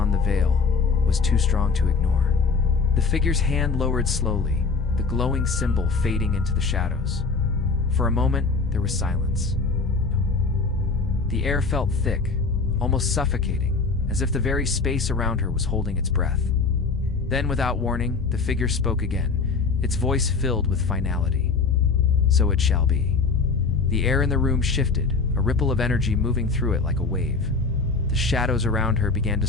the veil, was too strong to ignore. The figure's hand lowered slowly, the glowing symbol fading into the shadows. For a moment, there was silence. The air felt thick, almost suffocating, as if the very space around her was holding its breath. Then, without warning, the figure spoke again, its voice filled with finality. "So it shall be." The air in the room shifted, a ripple of energy moving through it like a wave. The shadows around her began to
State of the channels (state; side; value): quieter; right; 4.5 dB